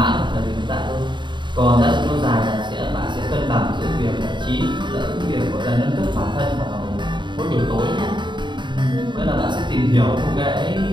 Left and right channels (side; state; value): left; late; 0.23 ms